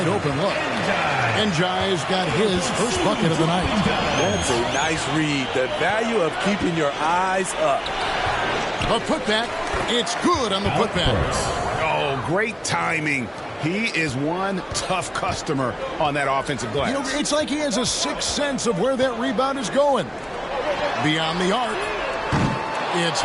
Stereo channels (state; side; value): identical; both; correlation 1.00